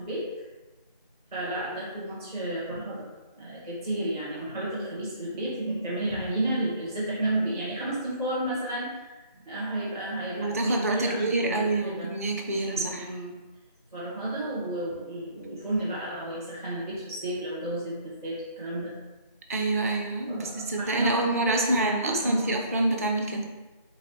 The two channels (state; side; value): inverted; both; correlation -0.55